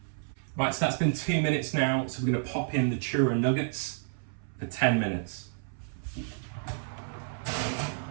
Right, so that's been 2 minutes now, so we're going to pop in the churro nuggets for 10 minutes.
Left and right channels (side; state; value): left; silent; 58 dB below the other